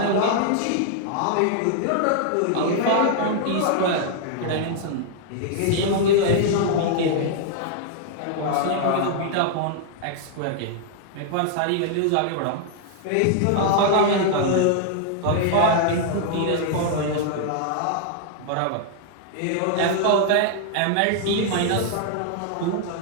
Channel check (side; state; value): both; different; correlation 0.00